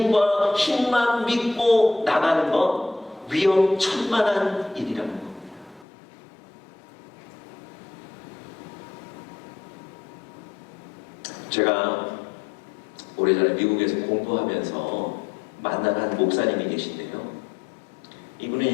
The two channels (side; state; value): right; drops out; at 5.9 s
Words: 힘만 믿고 나가는 건 위험천만한 일이라는 겁니다. 제가 오래전에 미국에서 공부하면서 만난 한 목사님이 계신데요.